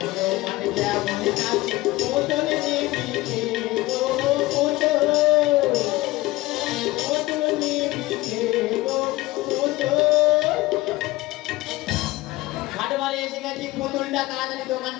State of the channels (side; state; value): right; quieter; 19.2 dB